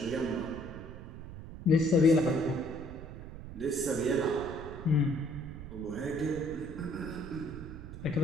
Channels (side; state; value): right; noise; rumble, 11 dB below the sound